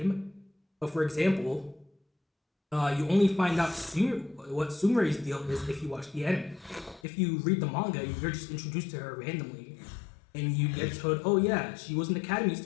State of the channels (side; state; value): right; drops out; at 7.0 s